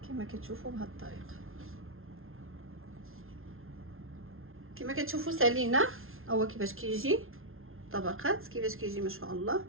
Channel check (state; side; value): late; left; 0.61 ms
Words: كما كتشوفوا بهذه الطريقه. كما كتشوفوا سالينا هو كيفاش كيجي طبقات، كيفاش كيجي ما شاء الله.